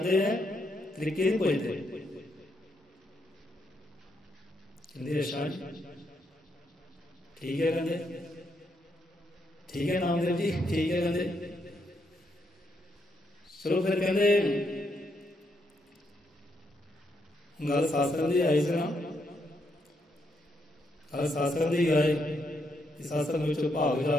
है, तरीके नहीं पुछदे। कहंदे अच्छा ठीक है, कहंदे ठीक है नामदेव जी ठीक है, कहंदे चलो फिर कहते गल सत्संग की आई सी ना, गल सत्संग की आए, सत्संग में भाग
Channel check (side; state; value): both; normal; correlation 0.78